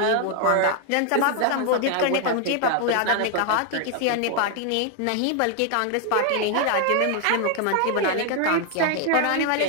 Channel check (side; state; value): both; different; correlation 0.00